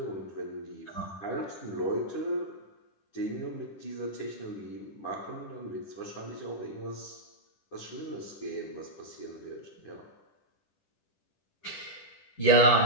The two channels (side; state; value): right; late; 10 ms